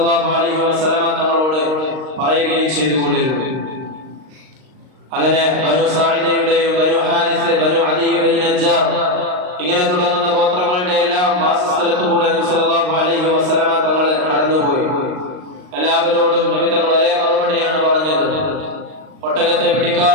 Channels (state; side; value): late; left; 39 ms